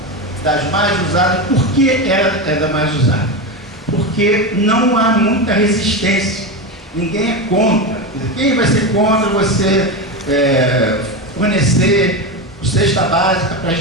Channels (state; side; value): normal; both; correlation 0.17